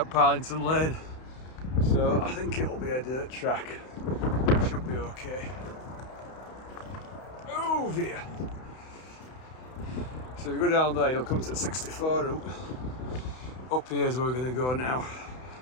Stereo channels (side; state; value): right; late; 31 ms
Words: Parlington Lane. So I think it'll be a dirt track. Should be okay. Oh dear. So if you go down there, you'll come to the 64 route. Up here is where we're going to go now.